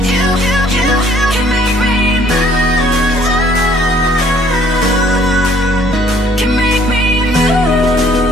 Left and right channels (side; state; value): both; normal; correlation 0.60